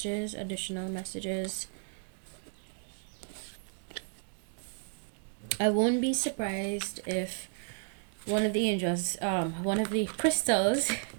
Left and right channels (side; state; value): left; silent; 56 dB below the other